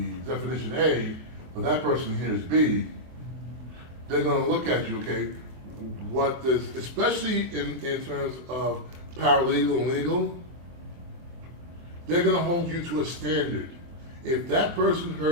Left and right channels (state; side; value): late; left; 24 ms